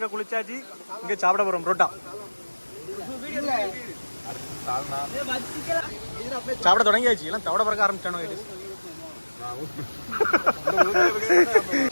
குளிச்சாச்சு, இங்க சாப்பிட போறோம் புரோட்டா. சாப்பிட தொடங்கியாச்சு, எல்லாம் தவிட பறக்க ஆரம்பிச்சானோ கைஸ்.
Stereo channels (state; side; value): inverted; both; correlation -1.00